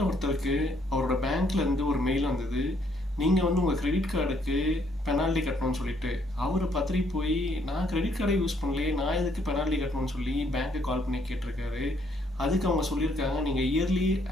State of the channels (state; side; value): normal; both; correlation 0.68